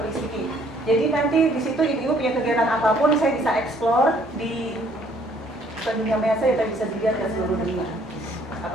speaking. Jadi nanti di situ ibu punya kegiatan apapun saya bisa explore di dunia maya, kita bisa dilihat ke seluruh dunia.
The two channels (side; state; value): both; normal; correlation 0.62